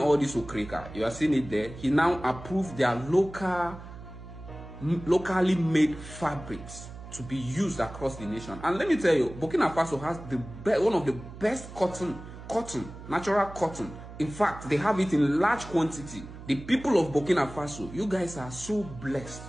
this okreka. You are seeing it there. He now approved their locally made fabrics to be used across the nation. And let me tell you, Burkina Faso has one of the best natural cotton. In fact, they have it in large quantity. The people of Burkina Faso, you guys are so blessed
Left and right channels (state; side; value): noise; right; hum, 14 dB below the sound